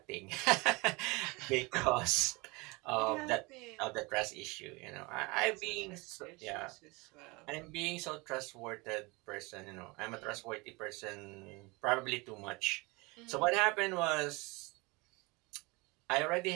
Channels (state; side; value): quieter; left; 25.8 dB